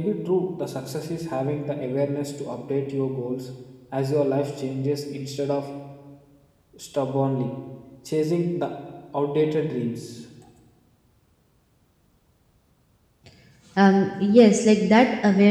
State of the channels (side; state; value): both; identical; correlation 1.00